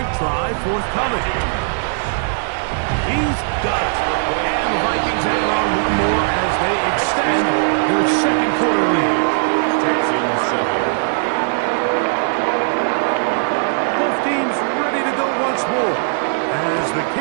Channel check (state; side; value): silent; left; digital silence